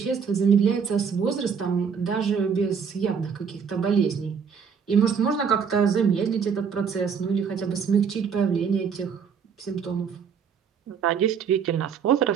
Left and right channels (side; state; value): left; quieter; 6.6 dB